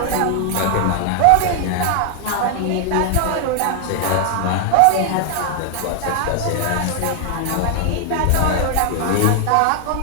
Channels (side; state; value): both; different; correlation 0.00